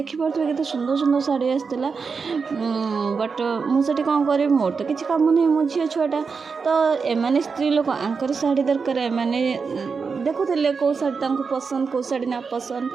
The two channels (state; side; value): quieter; left; 5.2 dB